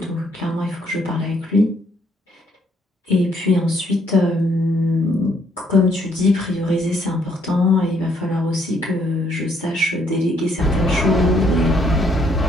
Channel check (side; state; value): both; normal; correlation 0.69